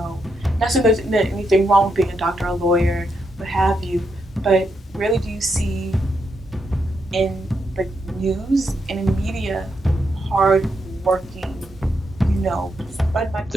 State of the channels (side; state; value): both; normal; correlation 0.81